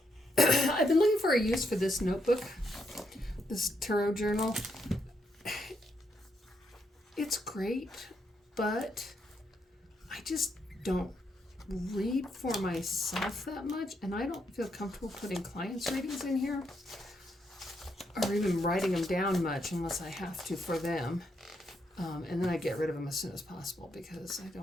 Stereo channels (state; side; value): normal; both; correlation 0.78